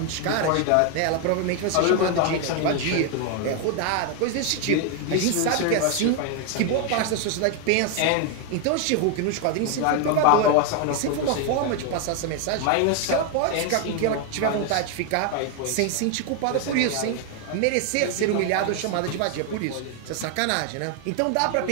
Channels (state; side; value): different; both; correlation 0.01